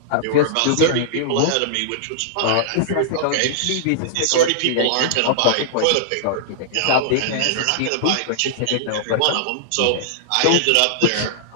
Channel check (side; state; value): both; different; correlation -0.01